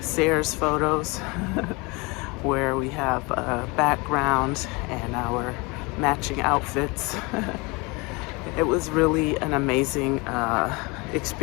Sears photos where we have a background and our matching outfits. It was really an amazing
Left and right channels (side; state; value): right; quieter; 26.9 dB